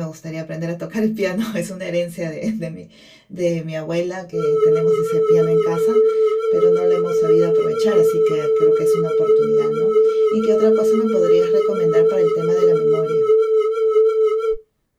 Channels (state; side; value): identical; both; correlation 1.00